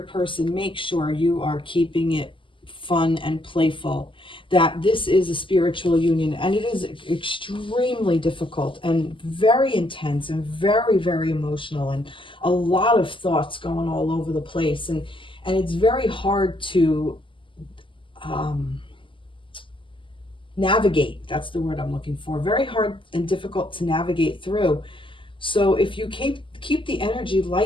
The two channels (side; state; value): right; late; 0.25 ms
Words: person, make sure you are keeping it fun and playful. That this is a spiritual union, and it is extremely difficult and very intense and very, very emotional, and a lot of thoughts going all over the place. And it's very hard to navigate. That's the word I'm looking for. Very hard and difficult to navigate through. So if you keep the energy